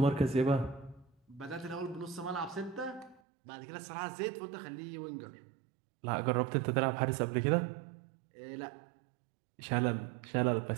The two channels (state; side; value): drops out; left; at 3.2 s